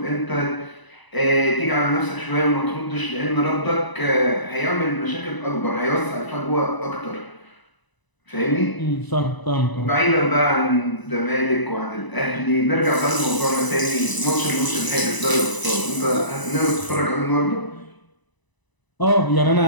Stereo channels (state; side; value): late; right; 1.0 ms